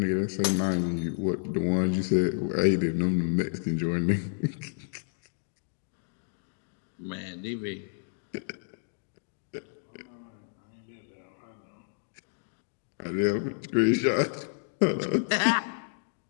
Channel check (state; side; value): silent; right; digital silence